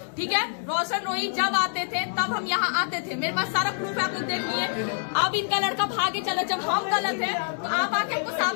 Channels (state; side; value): silent; right; digital silence